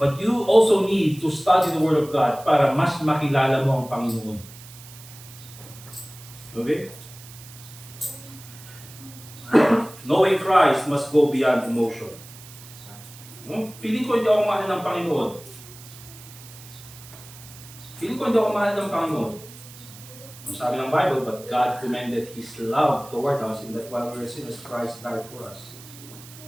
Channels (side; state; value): right; noise; hiss, 18 dB below the sound